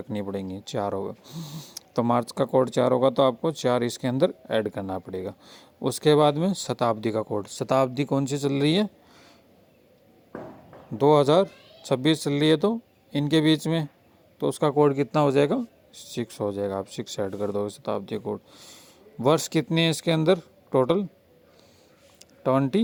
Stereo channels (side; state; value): both; identical; correlation 1.00